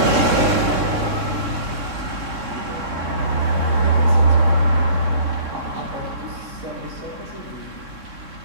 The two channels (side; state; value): left; late; 3.6 ms